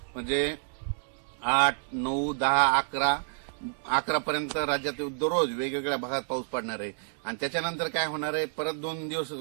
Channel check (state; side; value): silent; left; digital silence